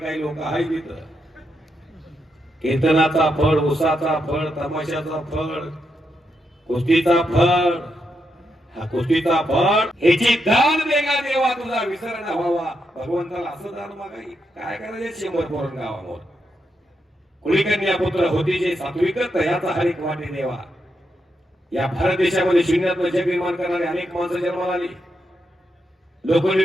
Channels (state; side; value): normal; both; correlation 0.83